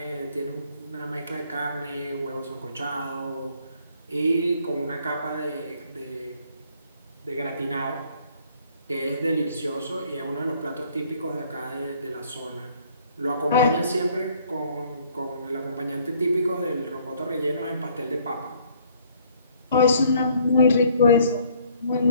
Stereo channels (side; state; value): both; inverted; correlation -0.61